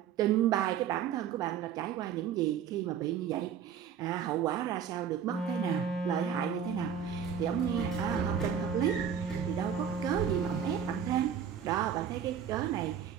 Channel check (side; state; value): left; quieter; 8.2 dB